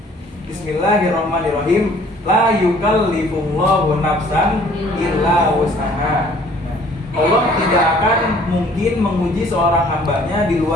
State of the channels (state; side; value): normal; both; correlation 0.56